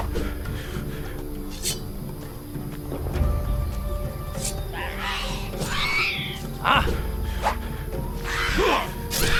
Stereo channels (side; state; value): both; identical; correlation 1.00